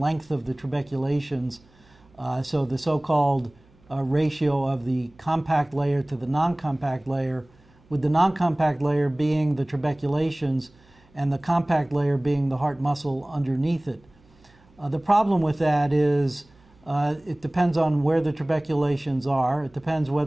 of the trabeculations, so the so-called ratio of the compact layer to the non-compact layer, with the non-compact layer being the trabeculations and the compact layer being the heart muscle underneath it. The problem with that is it depends on where the trabeculations are. It depends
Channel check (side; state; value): right; noise; hum, 30 dB below the sound